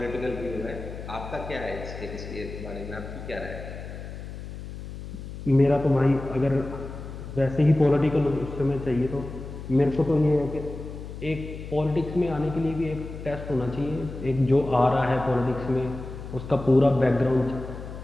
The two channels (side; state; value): left; noise; hum, 10 dB below the sound